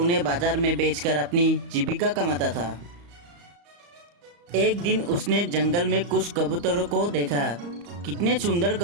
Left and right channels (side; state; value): left; late; 35 ms